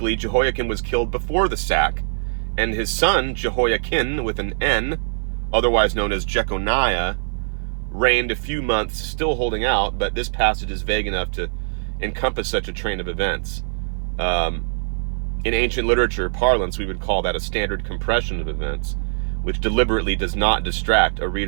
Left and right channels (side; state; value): left; silent; 55 dB below the other